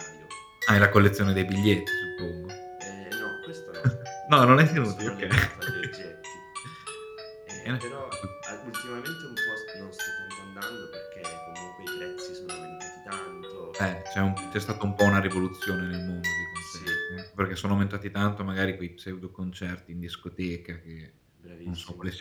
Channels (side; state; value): both; identical; correlation 1.00